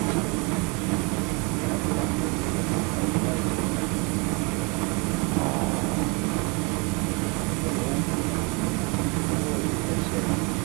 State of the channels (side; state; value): left; quieter; 30.5 dB